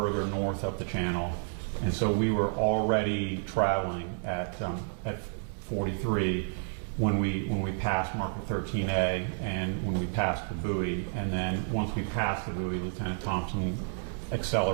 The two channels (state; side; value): silent; left; digital silence